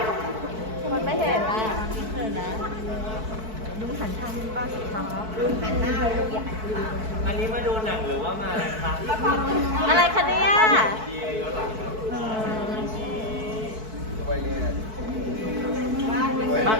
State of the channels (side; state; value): left; late; 4.6 ms